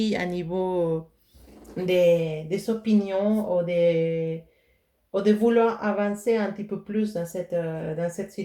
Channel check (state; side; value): identical; both; correlation 1.00